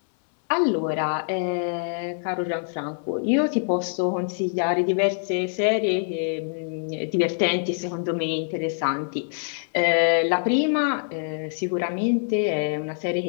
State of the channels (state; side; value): silent; right; 62 dB below the other